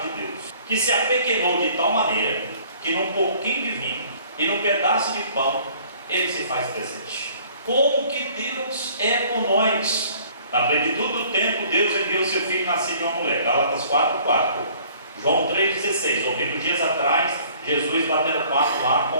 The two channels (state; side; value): inverted; both; correlation -0.55